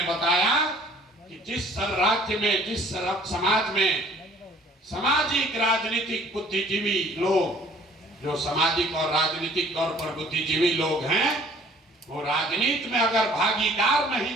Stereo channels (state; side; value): normal; both; correlation 0.55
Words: बताया कि जिस राज्य में, जिस समाज में सामाजिक राजनीतिक बुद्धिजीवी लोग, जो सामाजिक और राजनीतिक तौर पर बुद्धिजीवी लोग हैं, वो राजनीति में अगर भागीदार नहीं